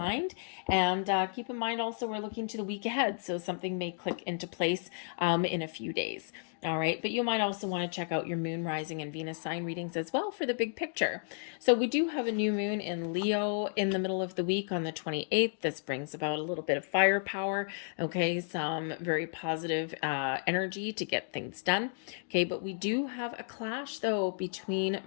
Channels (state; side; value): silent; right; digital silence